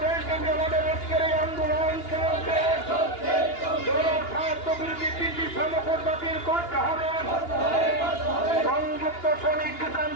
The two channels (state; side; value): late; right; 2.8 ms